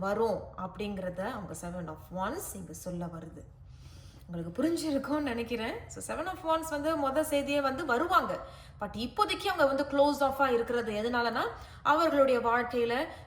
வரும் அப்படிங்கிறத அவங்க 7 of Wands இங்கே சொல்ல வருது. உங்களுக்கு புரிஞ்சிருக்கும்னு நினைக்கிறேன். ஸோ 7 of Wands வந்து மொதல் செய்தியே வந்து வருவாங்க. பட் இப்போதைக்கு அவங்க வந்து க்ளோஸ் ஆஃபாக இருக்கிறது எதனாலனா அவர்களுடைய வாழ்க்கையில்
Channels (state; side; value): identical; both; correlation 1.00